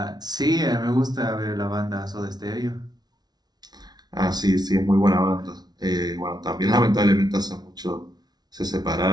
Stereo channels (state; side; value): late; left; 0.19 ms